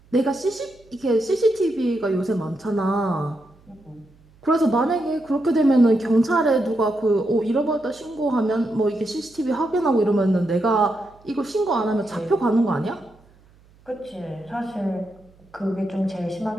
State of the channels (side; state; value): right; noise; hum, 29 dB below the sound